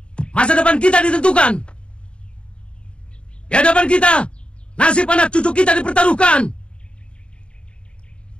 masa depan kita ditentukan. Di hadapan kita, nasib anak cucu kita dipertaruhkan.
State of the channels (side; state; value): right; late; 0.055 ms